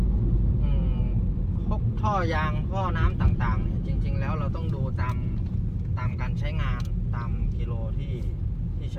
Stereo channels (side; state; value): both; identical; correlation 1.00